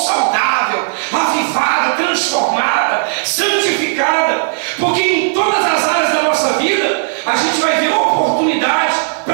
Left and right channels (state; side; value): silent; left; digital silence